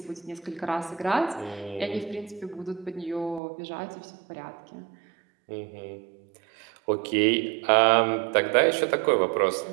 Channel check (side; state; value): left; drops out; at 3.4 s